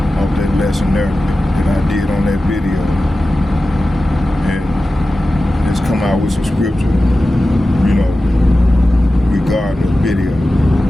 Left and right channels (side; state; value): both; normal; correlation 0.94